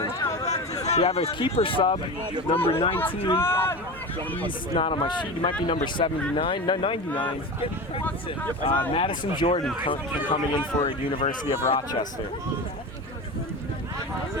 We have a keeper sub, number 19. He's not on my sheet. He might be number 79, no 99. Madison Jordan coming in for University of Rochester.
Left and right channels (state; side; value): normal; both; correlation 0.26